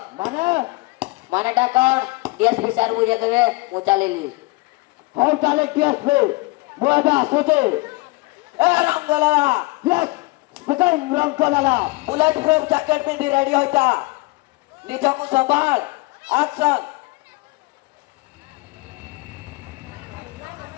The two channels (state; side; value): quieter; right; 24.1 dB